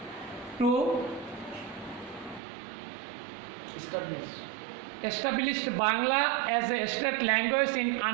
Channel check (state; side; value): drops out; left; at 2.4 s